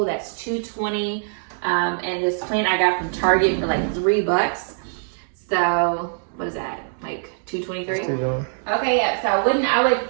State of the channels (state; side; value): silent; left; digital silence